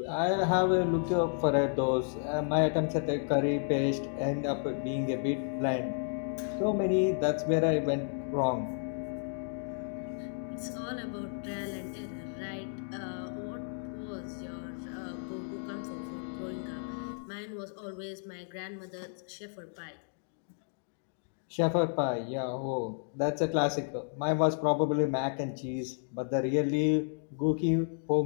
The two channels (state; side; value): silent; right; digital silence